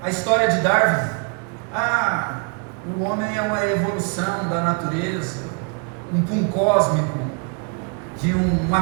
à história de Darwin. O homem é uma evolução da natureza, um pum cósmico, de uma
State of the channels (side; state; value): left; quieter; 34.5 dB